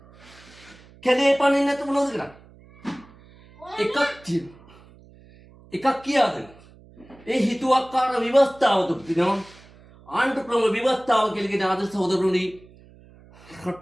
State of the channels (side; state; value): right; noise; hum, 24 dB below the sound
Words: කැලේ පනින්න නැතුව මොනවද කරන්නේ? එකක් කියාද? ඒ හිතුවක්කාර ව්‍යවස්ථාව තුල තියෙනවා ආණ්ඩු ක්‍රම ව්‍යවස්ථාව කියලා කියන ආදර්ශ සහෝදරවරුනි